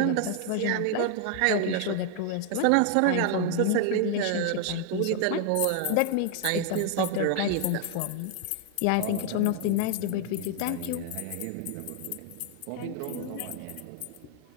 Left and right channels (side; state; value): both; different; correlation 0.00